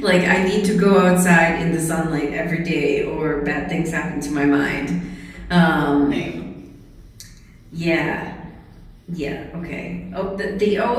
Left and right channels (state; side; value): identical; both; correlation 1.00